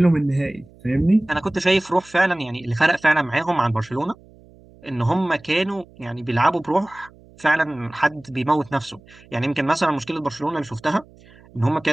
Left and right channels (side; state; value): right; noise; hum, 25 dB below the sound